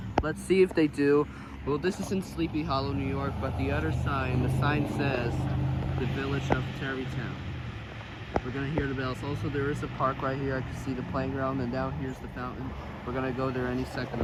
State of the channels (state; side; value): identical; both; correlation 1.00